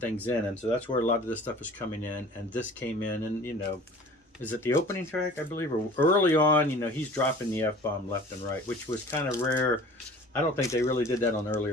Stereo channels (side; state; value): both; normal; correlation 0.45